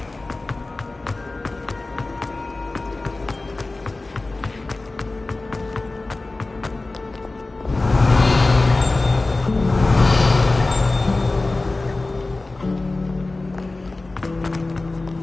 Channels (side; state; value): right; quieter; 3.2 dB